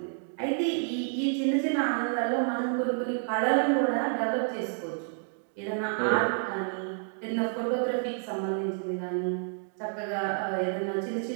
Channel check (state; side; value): silent; left; 58 dB below the other